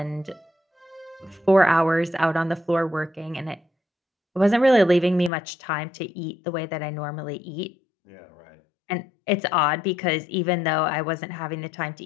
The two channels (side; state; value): right; drops out; at 5.3 s